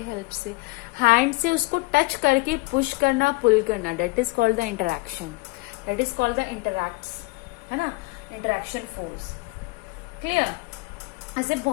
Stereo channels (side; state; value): right; quieter; 24.1 dB